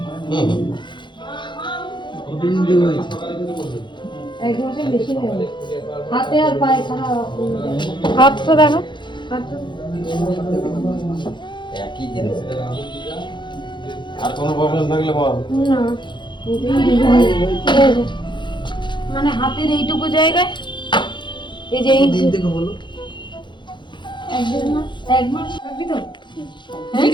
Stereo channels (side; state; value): right; late; 0.23 ms